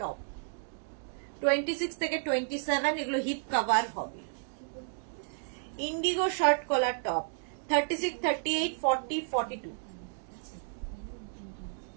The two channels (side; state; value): left; silent; digital silence